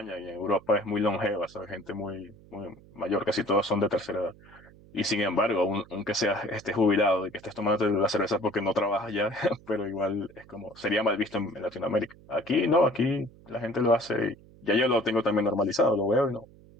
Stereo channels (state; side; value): noise; right; hum, 24 dB below the sound